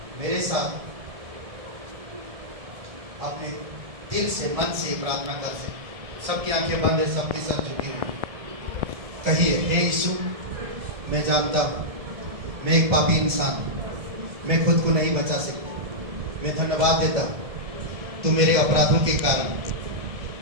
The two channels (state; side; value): late; left; 1.7 ms